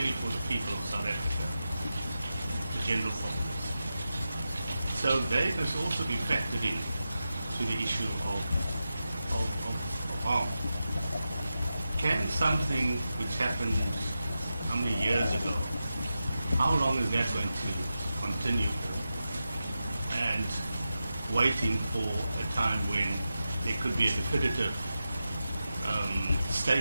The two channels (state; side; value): inverted; both; correlation -0.91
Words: for the people of South Africa, the general populace. So they must also be factored in to the issue of harm. Can something which happened how many years ago, how long is that going to continue for? And waiting for a time when there could be a definitive